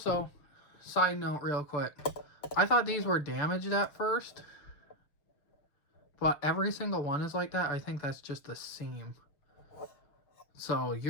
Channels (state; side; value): late; right; 6.6 ms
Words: side note real quick, I thought these were damaged at first, but every single one is like that. I think that's just the seam. So